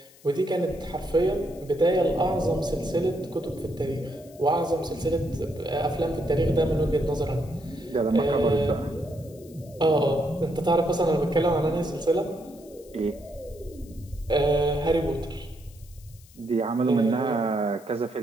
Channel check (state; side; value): noise; left; hiss, 25 dB below the sound